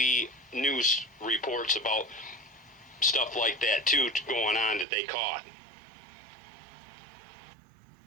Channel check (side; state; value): left; drops out; at 4.9 s